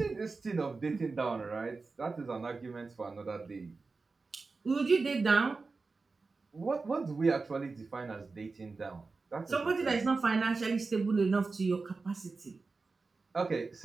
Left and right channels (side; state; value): left; quieter; 4.0 dB